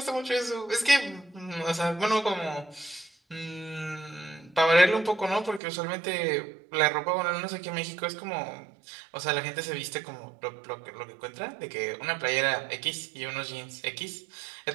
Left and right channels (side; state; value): left; drops out; at 5.6 s